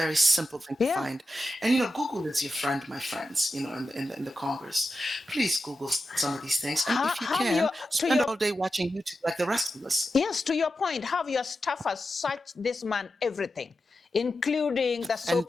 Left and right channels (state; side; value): normal; both; correlation 0.90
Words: simple thing to yeah. find. And you know, Google is your friend, my friends, you know, in the Congress. Please Google some of these things. And if you Have can, your to spend your all day watching YouTube like the rest of us. yes, to your point, have your staffers search this man everything, including the And